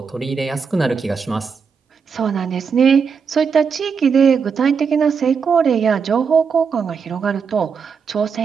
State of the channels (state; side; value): quieter; left; 6.0 dB